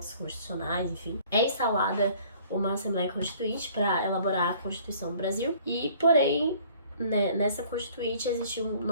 constitucionais, enfim. É instalada uma Assembleia Constituinte para elaborar a Constituição do Brasil, e, porém, nessa Constituinte existe um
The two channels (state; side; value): inverted; both; correlation -0.55